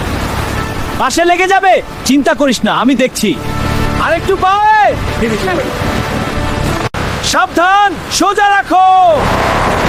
পাশে লেগে যাবে, চিন্তা করিস না, আমি দেখছি। আরেকটু পাওয়ে, সাবধান, সোজা রাখো।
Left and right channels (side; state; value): both; identical; correlation 1.00